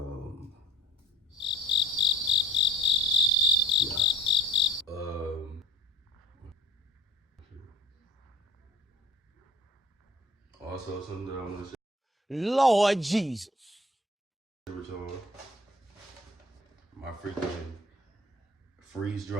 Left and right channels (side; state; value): both; normal; correlation 0.48